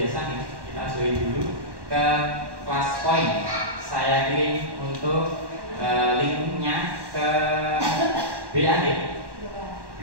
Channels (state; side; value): late; left; 1.1 ms